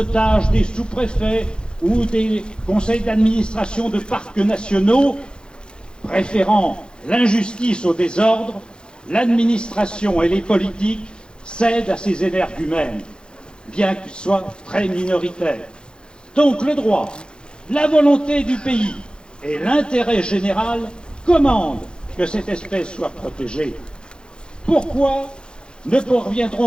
des sous-préfets ou des conseils d'administration de parcs nationaux, préférant l'injustice au désordre, l'administration et les politiques cèdent à ces énergumènes, bien qu'ils soient très minoritaires. Donc le droit, la volonté du pays et l'intérêt général commandent que cette espèce soit protégée. Pourquoi ne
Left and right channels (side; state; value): right; late; 0.050 ms